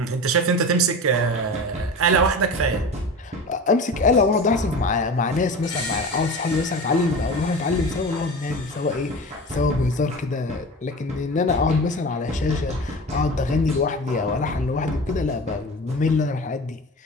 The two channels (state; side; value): normal; both; correlation 0.32